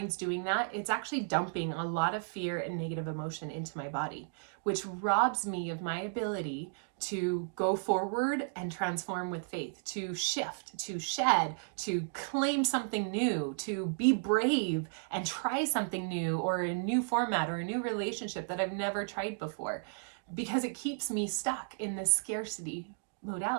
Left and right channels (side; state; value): left; silent; digital silence